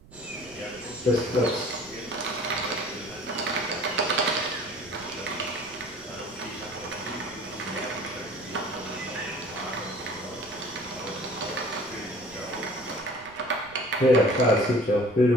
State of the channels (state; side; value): noise; right; rumble, 22 dB below the sound